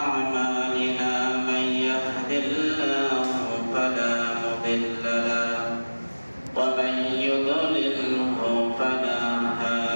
أعمالنا من يهد الله فلا مضل له ومن يضلله فلا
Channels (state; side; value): inverted; both; correlation -1.00